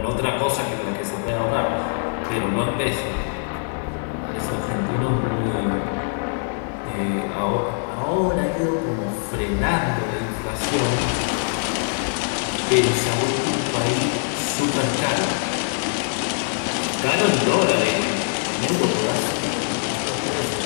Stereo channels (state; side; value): silent; right; digital silence